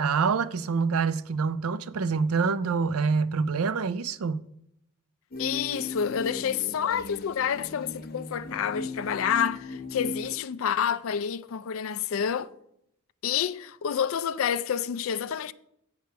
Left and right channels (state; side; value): normal; both; correlation 0.17